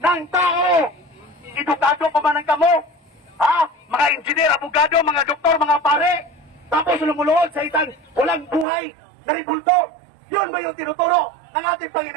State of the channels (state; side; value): drops out; left; at 8.7 s